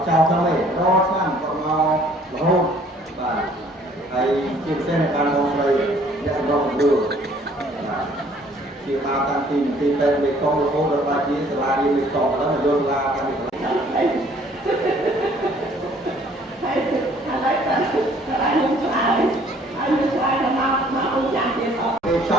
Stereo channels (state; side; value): normal; both; correlation 0.58